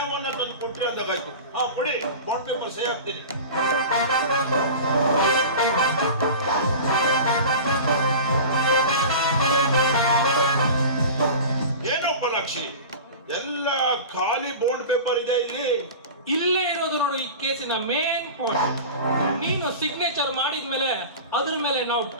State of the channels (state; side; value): inverted; both; correlation -0.33